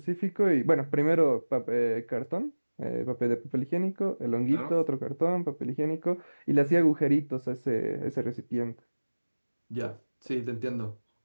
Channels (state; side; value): inverted; both; correlation -1.00